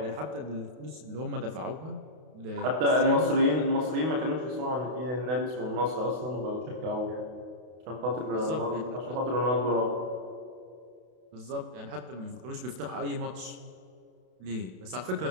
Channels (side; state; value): left; late; 32 ms